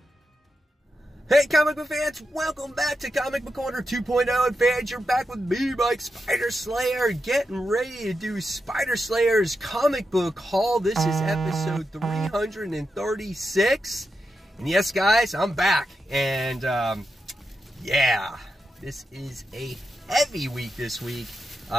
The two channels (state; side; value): normal; both; correlation 0.87